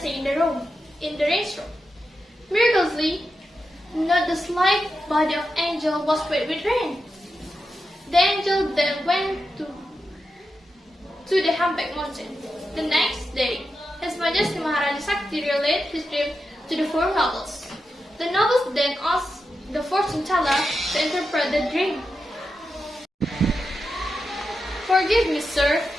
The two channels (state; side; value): normal; both; correlation 0.89